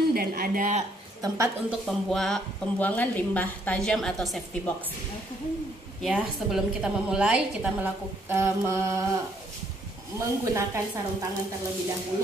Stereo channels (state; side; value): normal; both; correlation 0.68